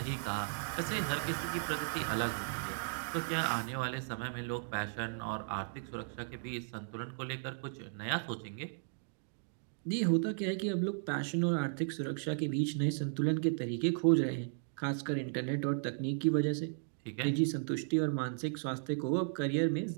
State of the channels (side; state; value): left; silent; digital silence